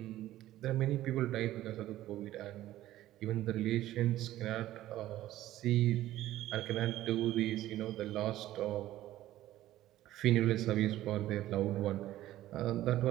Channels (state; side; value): quieter; left; 14.5 dB